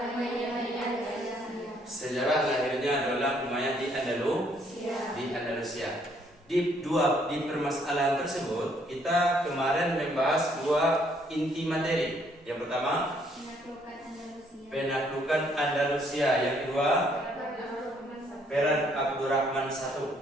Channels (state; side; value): normal; both; correlation 0.67